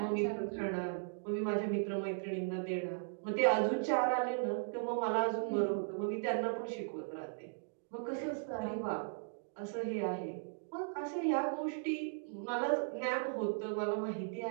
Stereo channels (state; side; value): silent; left; digital silence